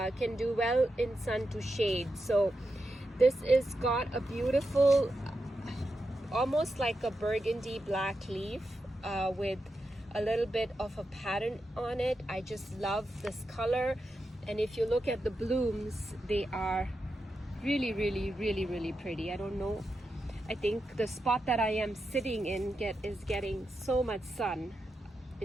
do well in sun to shade. So this is got a beautiful almost like a burgundy black leaf with a little bit of a pattern on it. I just love this color, and if you look at the blooms, they are really pretty. I don't know, I think the spot that I am sitting in is getting so much sun,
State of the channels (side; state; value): both; normal; correlation 0.88